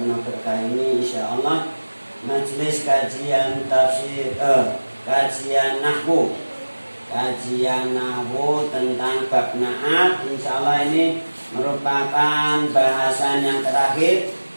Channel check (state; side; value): inverted; both; correlation -1.00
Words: berkah ini, insyaallah. Majelis kajian tafsir kajian nahwu tentang bab na'at. Insyaallah ini merupakan bahasan yang terakhir